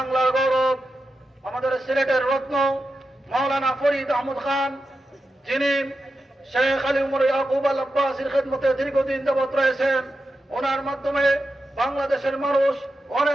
গৌরব, আমাদের সিলেটের রত্ন মাওলানা ফরিদ আহমদ খান, যিনি শেখ আলী উমর ইয়াকুব আল আব্বাসীর খেদমতে দীর্ঘদিন যাবৎ রয়েছেন। ওনার মাধ্যমে বাংলাদেশের মানুষ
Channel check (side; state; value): both; normal; correlation 0.89